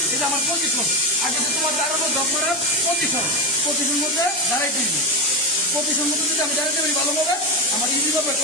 এই যে আমার পজিশন আগে যে তোমার দাঁড়ানো ড্রপ করার পজিশন মধ্যে দাঁড়াই দিবি। পজিশন মধ্যে যদি আমি দাঁড়াইতে পারি ভালোভাবে আমার ইজিভাবে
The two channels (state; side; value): normal; both; correlation 0.15